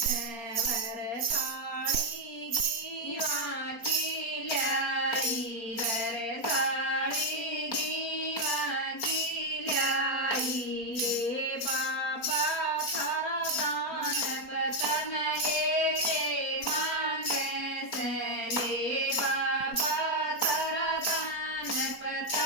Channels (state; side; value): late; right; 4.3 ms